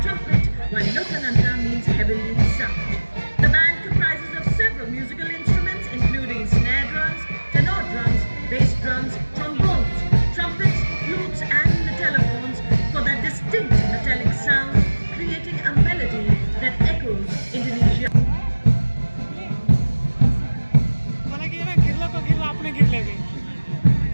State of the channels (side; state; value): both; inverted; correlation -1.00